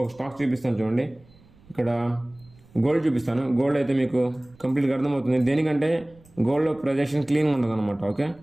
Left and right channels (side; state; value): right; noise; rumble, 27 dB below the sound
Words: ఒక స్టాక్ చూపిస్తాను. చూడండి, ఇక్కడ గోల్డ్ చూపిస్తాను. గోల్డ్ అయితే మీకు కంప్లీట్గా అర్థమవుతుంది. దేనికంటే గోల్డ్లో ప్రొజెక్షన్ క్లీన్గా ఉంటుంది అనమాట. ఓకే,